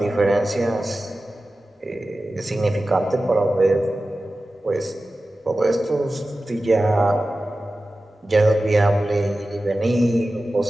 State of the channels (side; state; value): both; normal; correlation 0.95